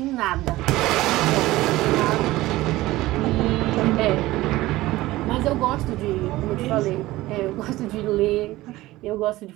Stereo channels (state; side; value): quieter; left; 17.8 dB